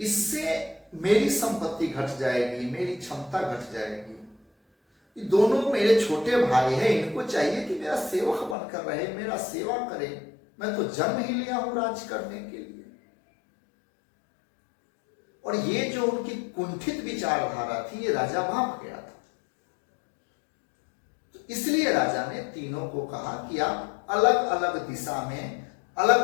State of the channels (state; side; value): drops out; right; at 8.6 s